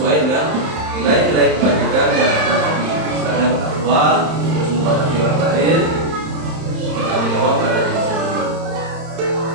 dengan nilai-nilai kebajikan yang ada tadi. Misalnya bertakwa, terus menghormati orang lain, bertanggung jawab pada diri sendiri.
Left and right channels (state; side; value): late; left; 31 ms